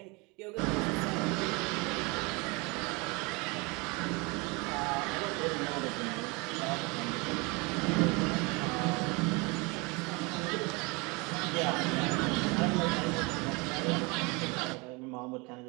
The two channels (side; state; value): left; quieter; 27.6 dB